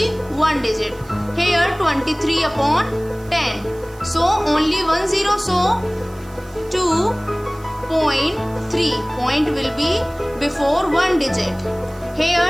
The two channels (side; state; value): right; noise; hiss, 25 dB below the sound